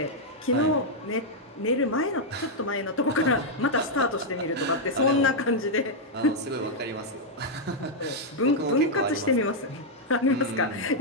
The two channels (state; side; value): normal; both; correlation -0.03